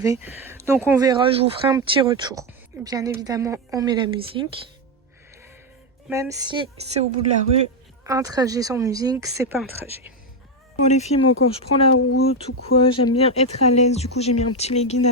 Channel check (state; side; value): normal; both; correlation 0.08